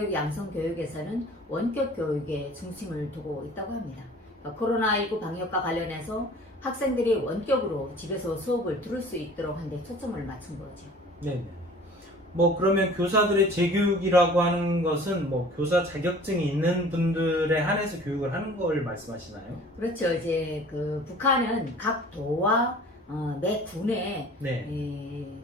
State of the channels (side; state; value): both; normal; correlation 0.47